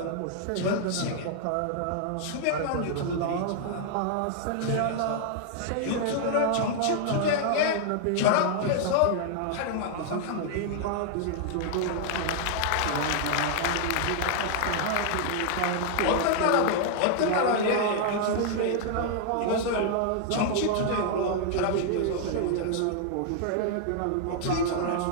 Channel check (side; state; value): both; different; correlation -0.01